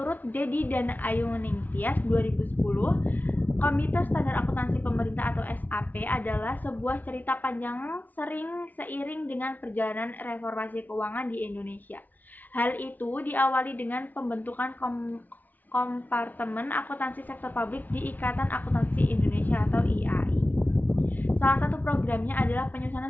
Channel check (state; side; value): late; right; 0.081 ms